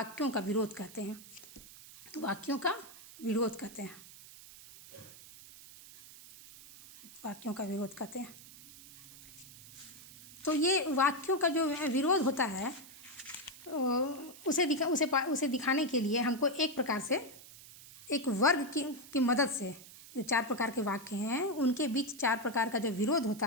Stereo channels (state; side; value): noise; right; hiss, 18 dB below the sound